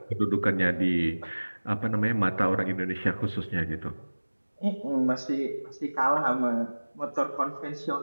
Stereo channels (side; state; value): both; inverted; correlation -1.00